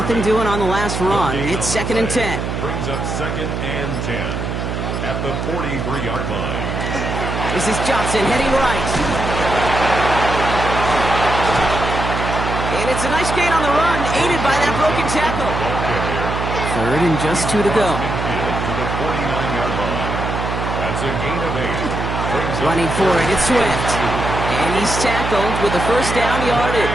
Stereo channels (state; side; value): noise; right; hum, 3 dB below the sound